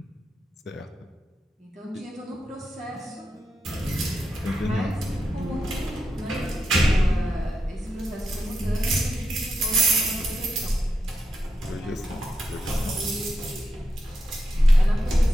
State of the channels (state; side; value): normal; both; correlation 0.85